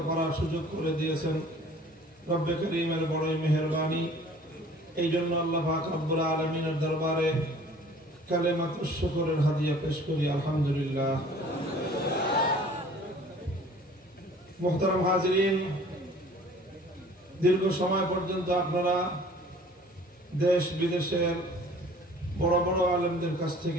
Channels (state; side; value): normal; both; correlation 0.50